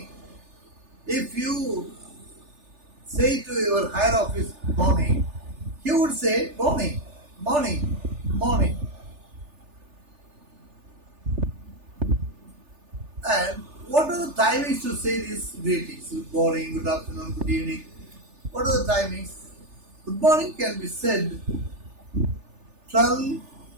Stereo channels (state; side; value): late; left; 3.4 ms